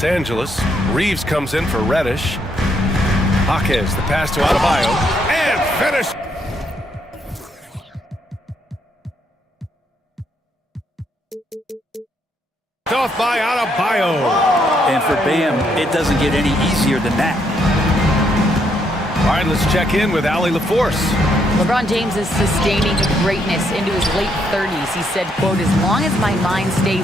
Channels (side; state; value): both; normal; correlation 0.74